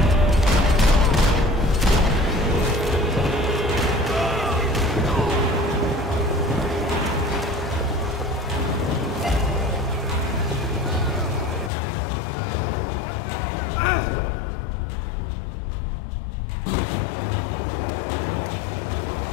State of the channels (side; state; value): right; drops out; at 11.7 s